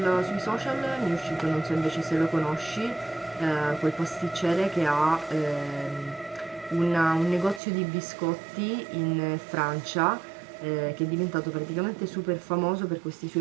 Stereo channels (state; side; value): drops out; left; at 7.6 s